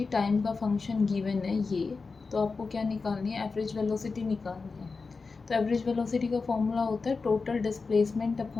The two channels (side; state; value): right; quieter; 4.4 dB